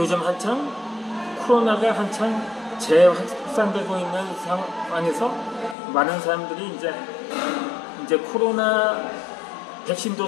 코로나가 한창 재확산되고 있는 상황에서 많은 사람들이 이제 코로나 백신도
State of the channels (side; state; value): right; drops out; at 5.8 s